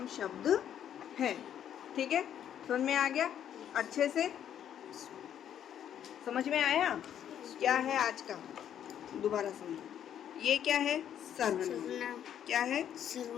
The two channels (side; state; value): right; quieter; 9.8 dB